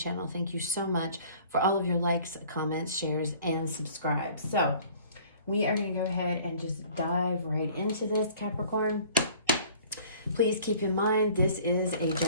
thank you so much for all of your likes, comments, shares, and subscribes. So we are going to go ahead and just dive right into this, Capricorn. Please keep in mind, this is a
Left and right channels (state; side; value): inverted; both; correlation -0.51